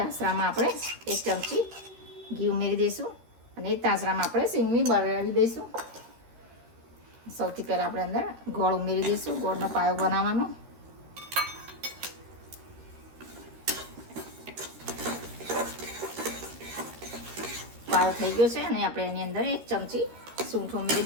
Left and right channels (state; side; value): late; left; 13 ms